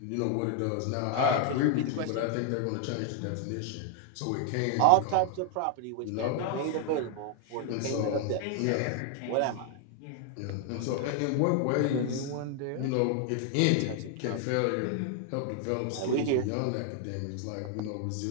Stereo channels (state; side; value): different; both; correlation 0.00